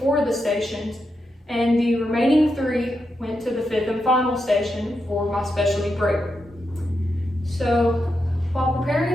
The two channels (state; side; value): normal; both; correlation 0.85